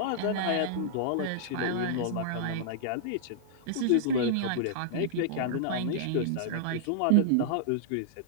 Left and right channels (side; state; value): both; different; correlation -0.02